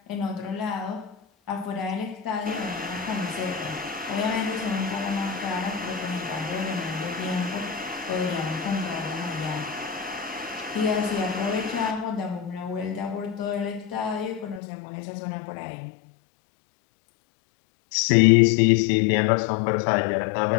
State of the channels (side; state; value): right; drops out; at 14.6 s